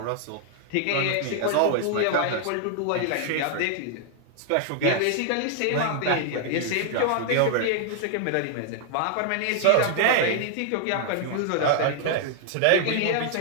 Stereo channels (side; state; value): both; different; correlation 0.00